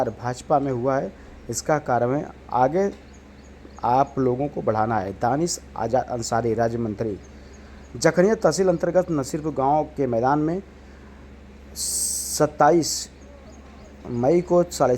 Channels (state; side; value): identical; both; correlation 1.00